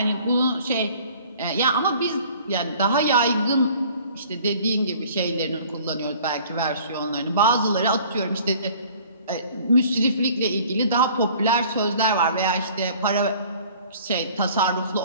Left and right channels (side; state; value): both; inverted; correlation -0.51